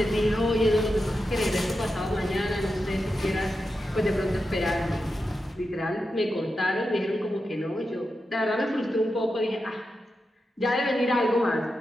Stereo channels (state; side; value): normal; both; correlation 0.89